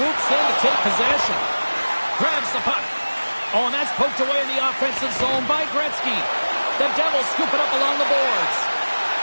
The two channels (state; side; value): inverted; both; correlation -1.00